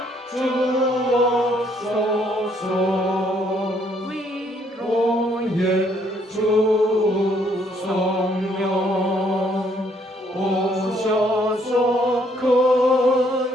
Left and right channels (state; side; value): normal; both; correlation 0.68